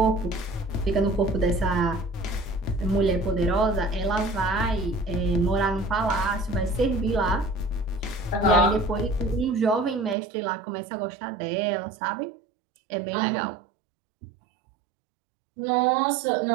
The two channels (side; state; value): left; drops out; at 10.2 s